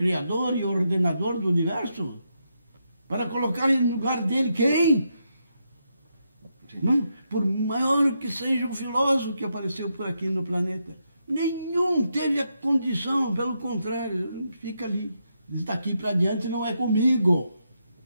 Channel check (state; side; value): inverted; both; correlation -0.82